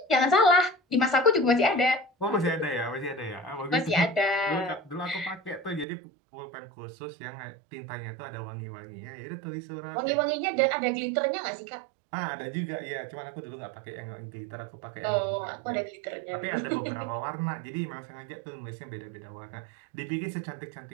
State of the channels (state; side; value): drops out; left; at 5.9 s